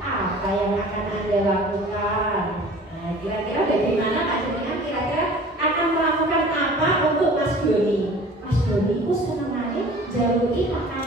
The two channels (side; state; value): both; normal; correlation 0.45